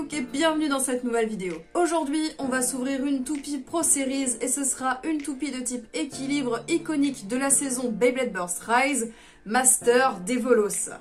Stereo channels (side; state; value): both; identical; correlation 1.00